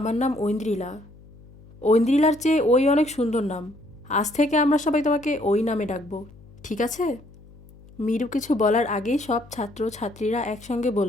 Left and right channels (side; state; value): left; noise; hum, 22 dB below the sound